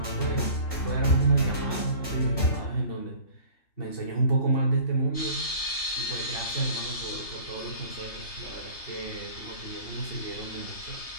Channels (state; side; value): late; right; 3.3 ms